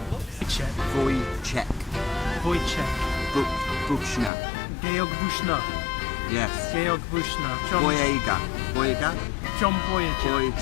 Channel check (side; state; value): right; drops out; at 4.3 s